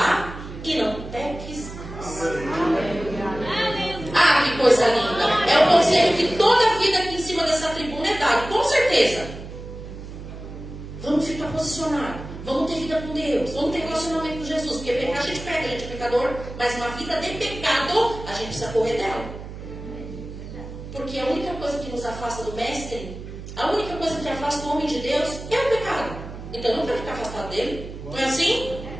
e não peques mais. Ah, que coisa linda. É o conselho que toda a vida aqui em cima dessa tribuna é dado, com certeza. Vamos ficar posicionados. Vamos ter vida com Deus. Vamos ter relacionamento com Jesus. Porque pecar a gente pega, a gente é pecador. Mas uma vida de pecado, a gente precisa correr dela. Porque a única coisa que nos afasta do Mestre, a única coisa que afasta o homem de Deus é o pecado. Então eu não quero ficar afastado dele. Não é assim?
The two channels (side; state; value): right; noise; hum, 11 dB below the sound